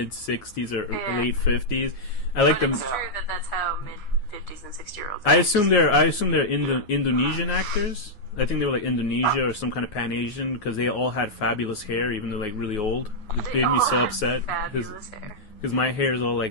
60s or late 50s. I like them. It's true that that's how mid-50s and 60-year-olds I assume they're Indonesian actors. I think they were like Indonesia or some kind of Pan-Asian because they all had fabulous hair, even though like really old. It They made me all so had upset fabulous hair. because my hair is all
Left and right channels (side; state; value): right; late; 9.4 ms